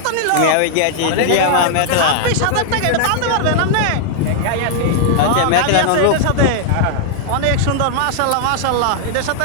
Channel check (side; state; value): both; different; correlation -0.01